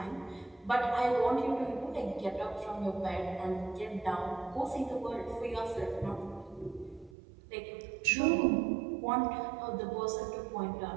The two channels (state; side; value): drops out; left; at 7.2 s